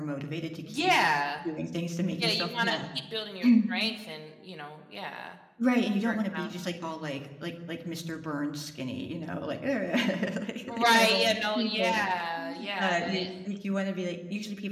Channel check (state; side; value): identical; both; correlation 1.00